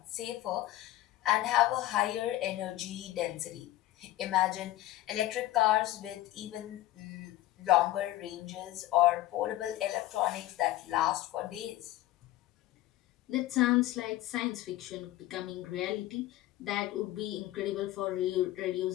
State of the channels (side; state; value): right; quieter; 15.4 dB